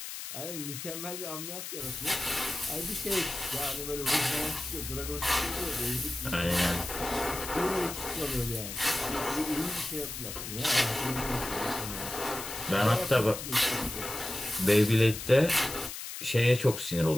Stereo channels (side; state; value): left; noise; hiss, 8 dB below the sound